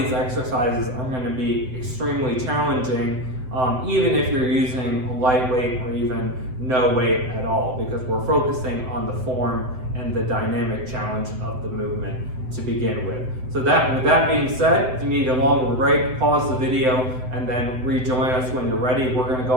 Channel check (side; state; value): left; late; 7.8 ms